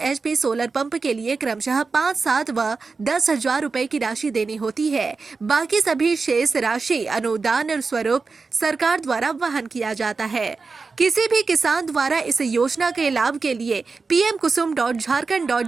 HP सोलर पंप के लिए क्रमशः 5, 7 व 10,000 रुपए की राशि देनी होती है। बाकी सभी शेष राशि अनुदान स्वरूप सरकार द्वारा वहन किया जाता है। किसी भी किसान द्वारा इस योजना के लाभ के लिए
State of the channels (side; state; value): left; quieter; 4.4 dB